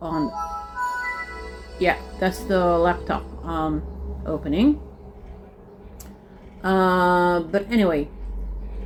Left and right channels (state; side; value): identical; both; correlation 1.00